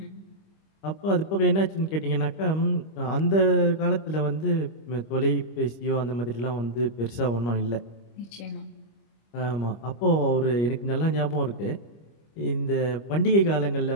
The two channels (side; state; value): right; late; 25 ms